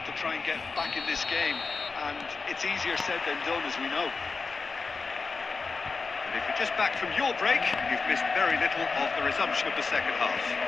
to try and get back in this game, and it's easier said than done, as we know. And if you're just back from your break, you've missed very little of the resumption of the second half.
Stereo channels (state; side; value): quieter; right; 4.4 dB